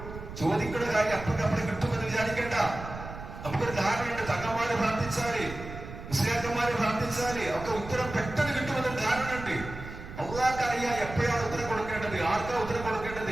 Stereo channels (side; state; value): right; noise; rumble, 11 dB below the sound